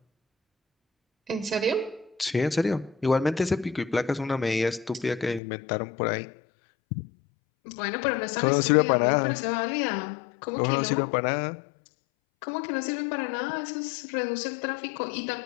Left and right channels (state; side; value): drops out; right; at 5.4 s